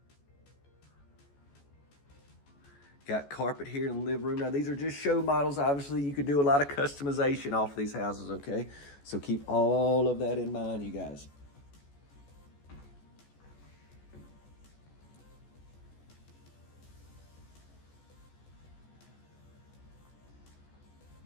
Got carpet here in the living room. Now, these are just show models. Obviously, you could do a lot of customization off these houses, okay? So keep all of that in mind, you guys.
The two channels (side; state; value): right; late; 14 ms